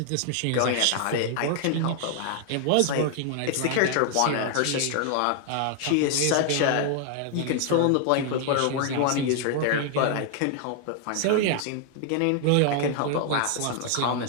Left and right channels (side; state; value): both; different; correlation 0.00